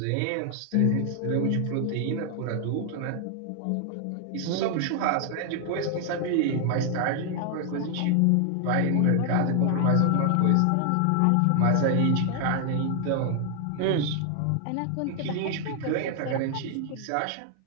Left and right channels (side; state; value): both; different; correlation 0.00